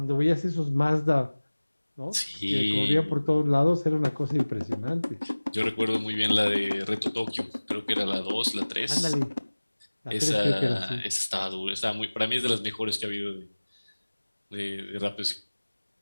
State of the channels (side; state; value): both; inverted; correlation -1.00